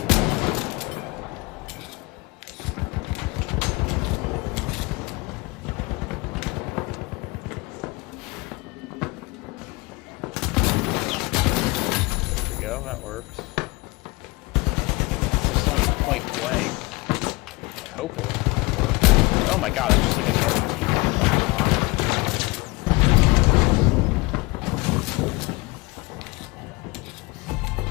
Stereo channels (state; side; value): quieter; right; 24.5 dB